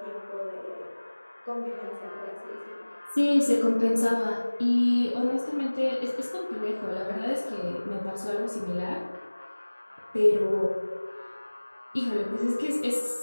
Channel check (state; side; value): inverted; both; correlation -1.00